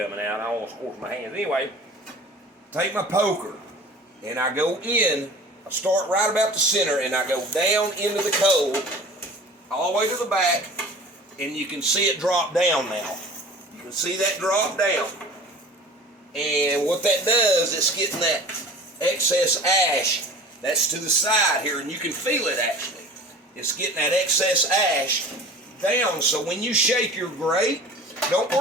out. I almost scorched my hands. Anyway, take my poker and I go in. I start right about the center and I go down into the coal all the way to the back, and you can see it drop down now. You can see that drop down. And what that does, it's getting that excess ash that's to the side here, and you can feel it actually. It's getting that excess ash down, so when you shake your grate, don't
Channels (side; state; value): both; normal; correlation 0.41